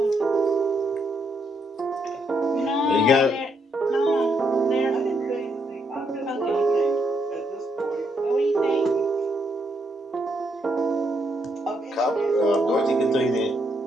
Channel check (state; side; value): normal; both; correlation 0.76